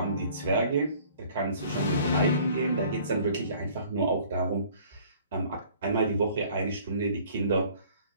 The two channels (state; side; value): inverted; both; correlation -0.53